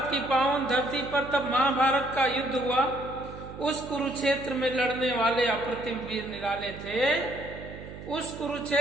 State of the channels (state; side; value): noise; right; hum, 13 dB below the sound